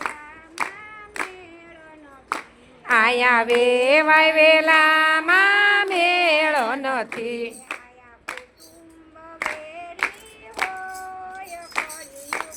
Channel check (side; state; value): both; identical; correlation 1.00